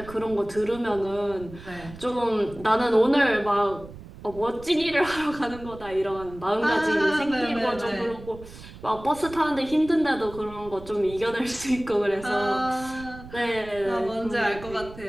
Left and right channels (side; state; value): right; noise; rumble, 16 dB below the sound